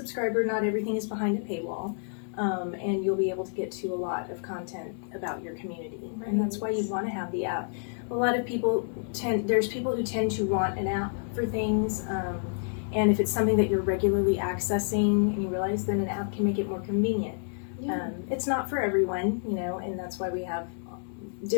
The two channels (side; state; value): right; silent; digital silence